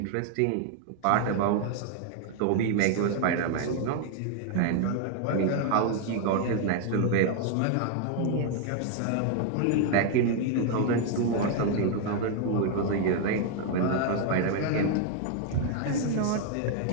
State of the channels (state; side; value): different; both; correlation 0.00